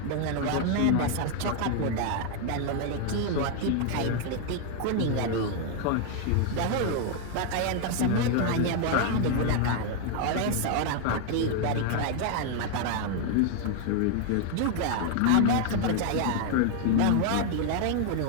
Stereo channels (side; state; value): both; different; correlation 0.01